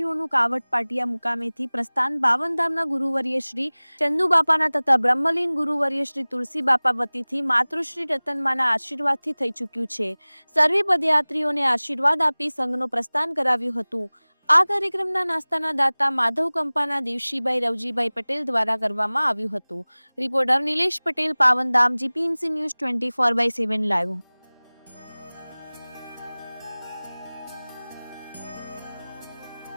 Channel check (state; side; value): inverted; both; correlation -1.00